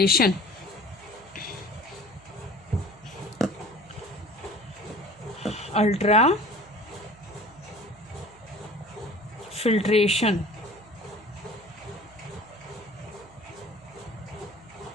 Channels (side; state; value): right; noise; hum, 24 dB below the sound